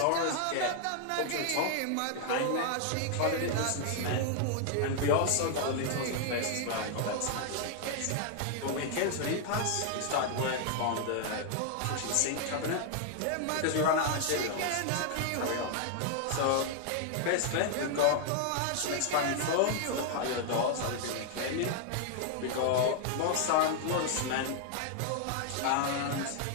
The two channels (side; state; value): both; different; correlation 0.00